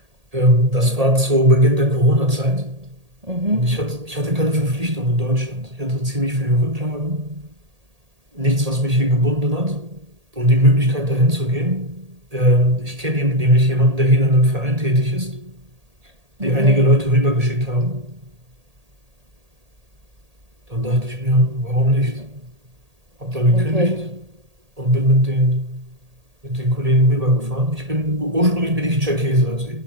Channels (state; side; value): late; left; 1.8 ms